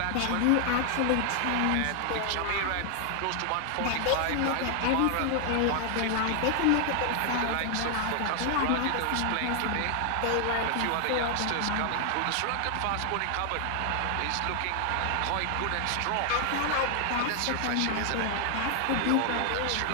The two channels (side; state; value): both; different; correlation 0.00